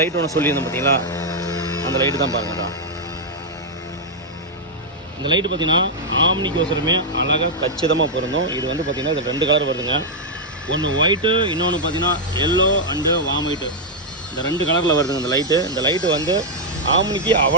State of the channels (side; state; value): both; normal; correlation -0.03